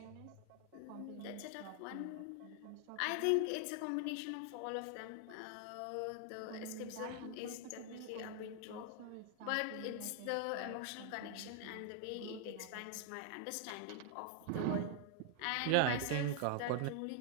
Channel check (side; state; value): both; different; correlation 0.00